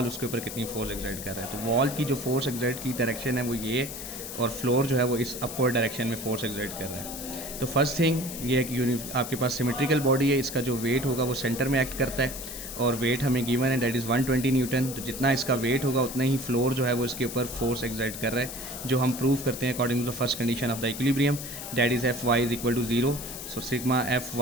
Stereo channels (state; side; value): noise; left; hiss, 9 dB below the sound